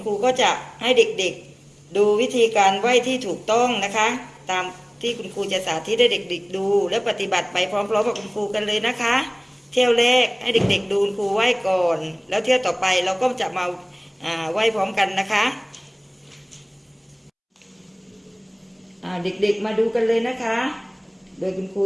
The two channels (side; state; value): both; identical; correlation 1.00